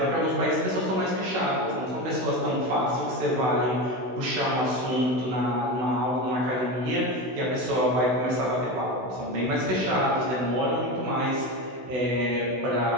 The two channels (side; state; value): left; late; 16 ms